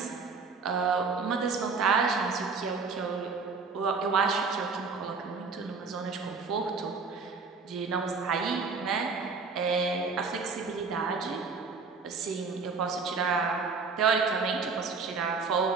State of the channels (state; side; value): quieter; left; 4.7 dB